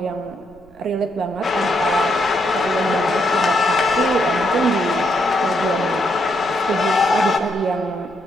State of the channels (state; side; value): noise; right; rumble, 28 dB below the sound